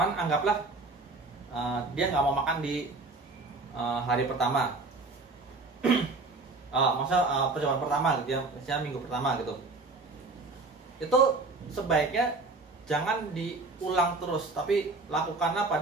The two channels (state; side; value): quieter; left; 3.5 dB